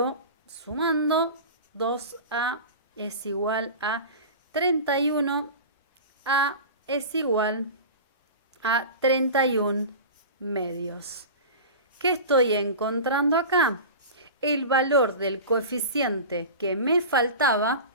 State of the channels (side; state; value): both; inverted; correlation -0.32